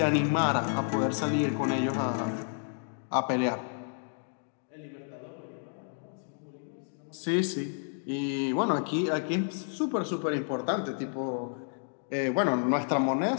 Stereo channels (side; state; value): right; silent; digital silence